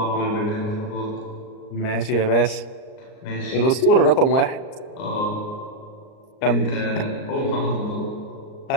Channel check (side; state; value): right; late; 38 ms